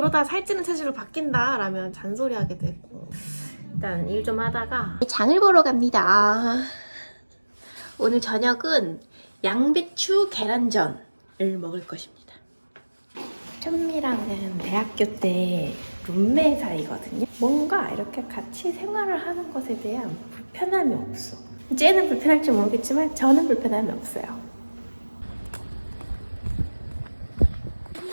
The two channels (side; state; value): both; inverted; correlation -1.00